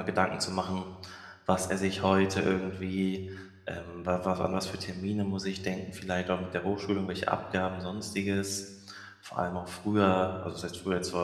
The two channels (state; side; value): identical; both; correlation 1.00